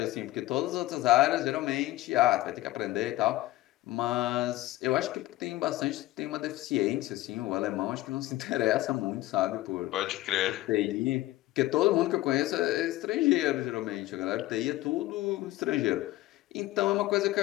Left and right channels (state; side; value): quieter; right; 17.0 dB